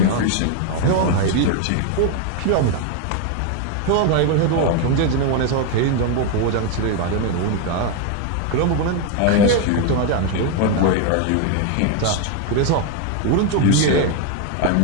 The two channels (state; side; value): different; both; correlation 0.01